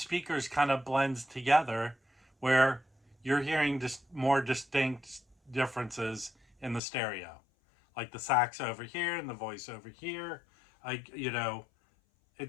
kind of blends together, where you're hearing just more distinct differences in the stereo, like the sax over here and the voice over here. I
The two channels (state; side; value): drops out; right; at 6.8 s